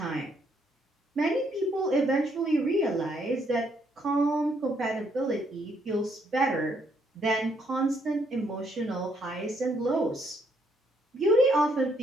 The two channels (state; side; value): normal; both; correlation 0.71